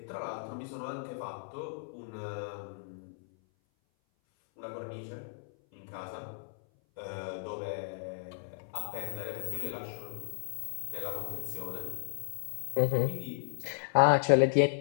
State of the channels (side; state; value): right; silent; 55 dB below the other